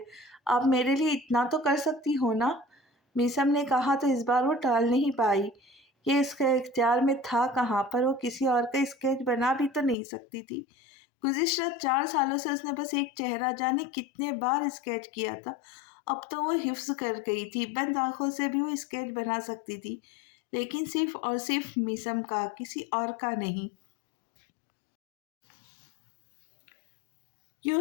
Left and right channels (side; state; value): right; drops out; at 10.0 s